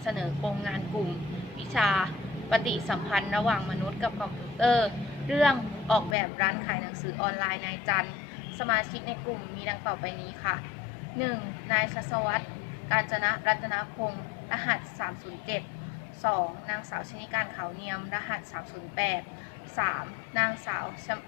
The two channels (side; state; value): right; drops out; at 6.2 s